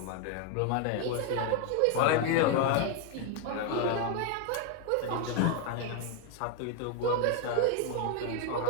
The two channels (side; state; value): both; different; correlation 0.01